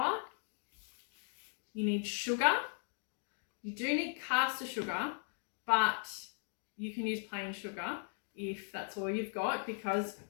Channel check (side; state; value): right; silent; 52 dB below the other